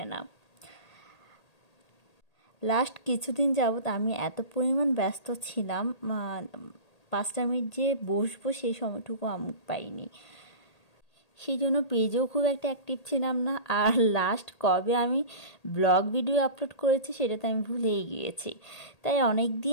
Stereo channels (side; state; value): right; late; 1.8 ms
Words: না। লাস্ট কিছুদিন যাবৎ আমি এত পরিমাণ ব্যস্ত ছিলাম, 5টা মিনিট যে বসবো সেই সময়টুকু আমি পাইনি। সেই জন্য পেজেও খুব একটা অ্যাক্টিভ ছিলাম না। আর লাস্ট কবে আমি ব্লগ ভিডিও আপলোড করেছি সেটা তো আমি ভুলেই গিয়েছি। তাই অনেক